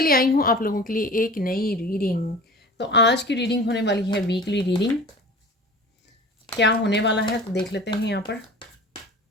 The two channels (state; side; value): normal; both; correlation 0.39